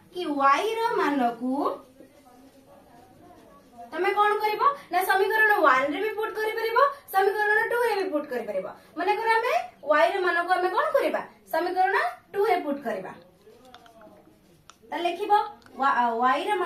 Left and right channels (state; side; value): identical; both; correlation 1.00